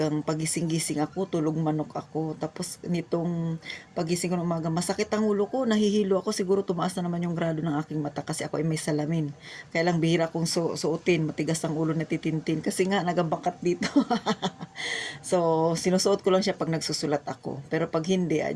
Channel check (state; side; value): identical; both; correlation 1.00